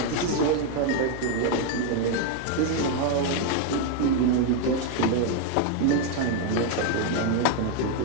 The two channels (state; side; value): different; both; correlation 0.01